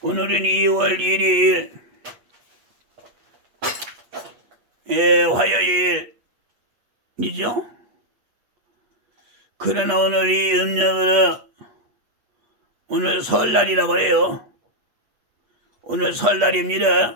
1일, 화요일이죠. 그러나 오늘이 음력으로 오늘 설날이라고 해요. 오늘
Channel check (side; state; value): left; late; 8.4 ms